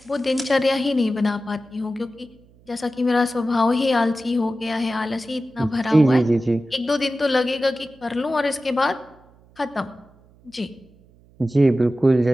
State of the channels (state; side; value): noise; right; hum, 29 dB below the sound